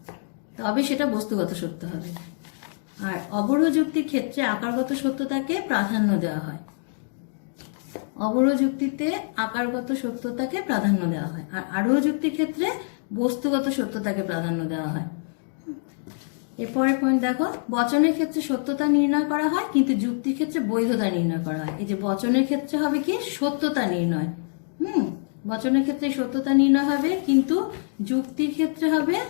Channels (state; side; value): silent; right; digital silence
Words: তবে সেটা বস্তুগত সত্য হবে। আর অবরোহ যুক্তির ক্ষেত্রে আকারগত সত্যতাকে প্রাধান্য দেওয়া হয়। অবরোহ যুক্তিতে আকারগত সত্যতাকে প্রাধান্য দেওয়া হয়, আর আরোহ যুক্তির ক্ষেত্রে বস্তুগত সত্যতাকে প্রাধান্য দেওয়া হয়। এরপরের পয়েন্ট দেখো, বচনের ক্ষেত্রে সত্যতা নির্ণয় করা হয় কিন্তু যুক্তির ক্ষেত্রে বৈধতা নির্ণয় করা হয়। এই যে বচনের ক্ষেত্রে হবে কি সত্যতা নির্ণয়, বচনের ক্ষেত্রে সত্যতা নির্ণয় হবে কিন্তু যুক্তির ক্ষেত্রে হবে